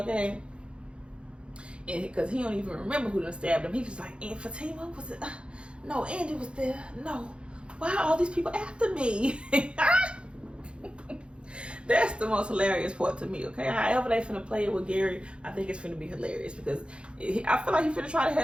And because he don't even remember who done stabbed him. He was like, and Fatima, was it? No, Andy was there. No, why are all these people after me? That's the most hilarious part to me, okay? However they finna play it with Gary, I think it's finna be hilarious, because I feel like he finna try to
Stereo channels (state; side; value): late; left; 0.057 ms